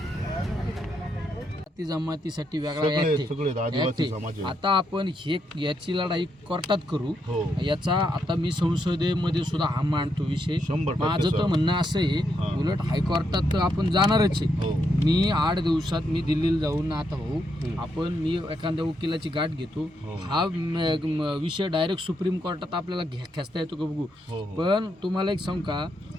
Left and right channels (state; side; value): normal; both; correlation 0.79